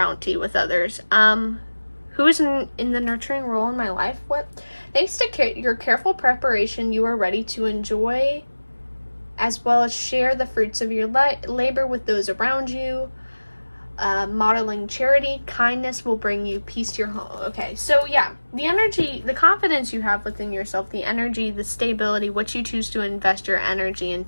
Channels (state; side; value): inverted; both; correlation -1.00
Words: with others. Who is in the nurturing role in my life? What? Thanks to your careful preparation, you are ready to enjoy as well as share the fruits of your labor with those around you. Modeling charity, kindness will bring you peace to your home. Okay, so yeah, the energy, the confidence you have within yourself, the energy, the stability, what you choose to invest your energy